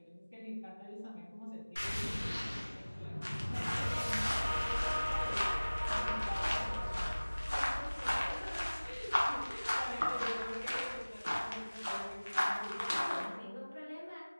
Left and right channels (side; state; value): both; inverted; correlation -1.00